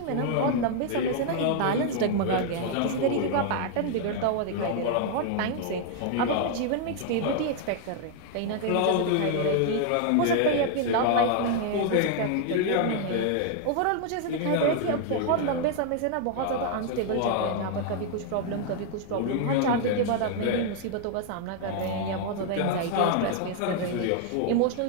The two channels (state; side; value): different; both; correlation 0.00